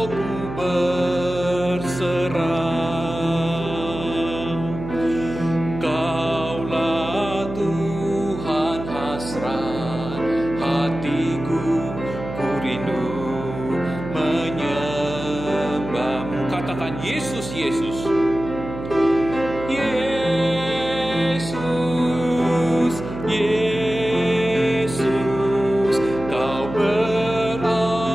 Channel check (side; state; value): right; noise; hum, 9 dB below the sound